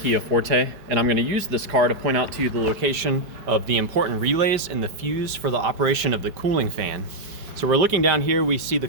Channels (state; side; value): late; left; 5.1 ms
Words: Forte, and I'm going to use this car to point out to you the location of the important relays and the fuse for the operation of the cooling fan. So we're looking down here, we see